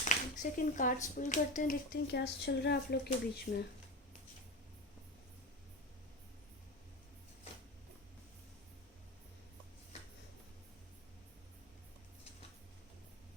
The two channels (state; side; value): normal; both; correlation 0.23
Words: सेकंड, कार्ड्स पुल करते हैं, देखते हैं क्या चल रहा है आप लोग के बीच में।